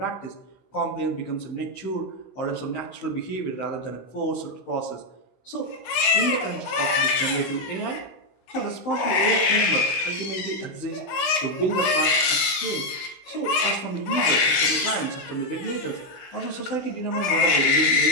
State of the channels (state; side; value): late; right; 16 ms